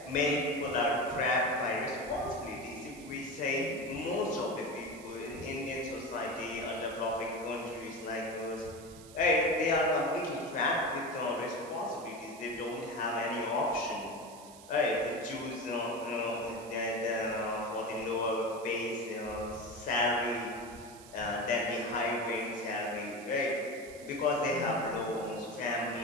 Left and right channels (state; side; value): noise; right; hiss, 19 dB below the sound